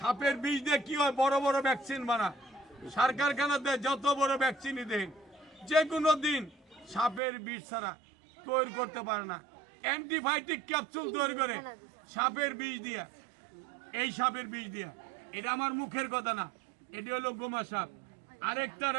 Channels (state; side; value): drops out; left; at 7.2 s